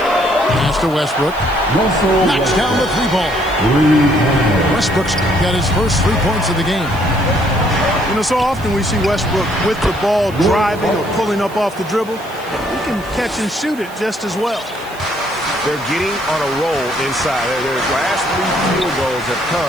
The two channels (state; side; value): noise; right; hiss, 22 dB below the sound